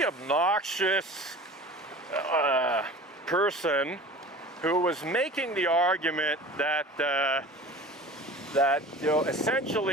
obnoxious person who was making the argument that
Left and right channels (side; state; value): both; normal; correlation 0.39